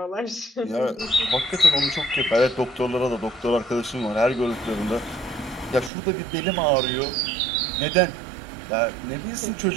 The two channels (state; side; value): drops out; left; at 5.9 s